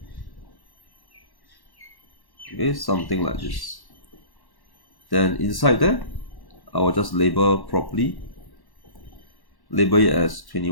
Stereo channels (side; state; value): right; late; 1.1 ms